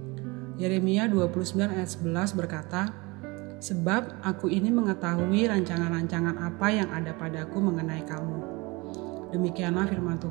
Yeremia 29 ayat 11 berkata, "Sebab aku ini mengetahui rancangan-rancangan apa yang ada padaku mengenai kamu. Demikianlah firman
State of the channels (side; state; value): left; quieter; 25.2 dB